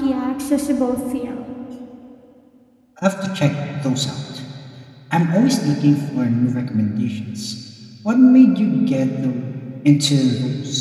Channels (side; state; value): both; identical; correlation 1.00